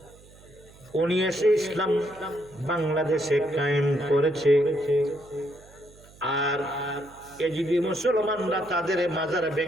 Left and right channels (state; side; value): noise; right; hum, 24 dB below the sound